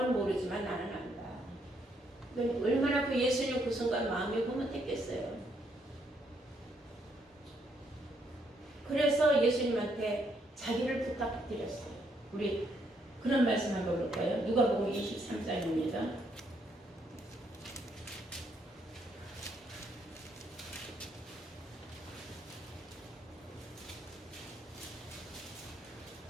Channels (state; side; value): normal; both; correlation 0.73